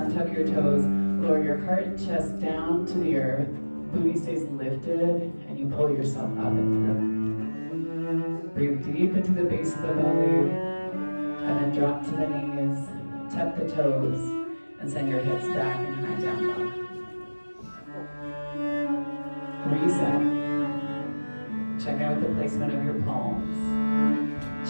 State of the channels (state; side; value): inverted; both; correlation -1.00